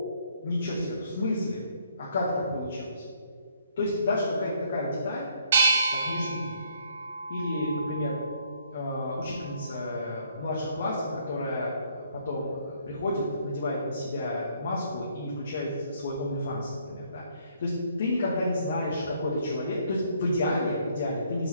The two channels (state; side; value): inverted; both; correlation -0.66